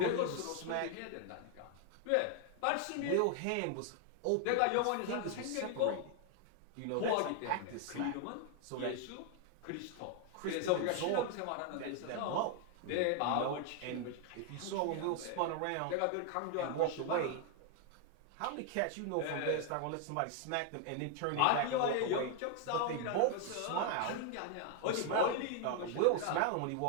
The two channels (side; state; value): both; different; correlation 0.00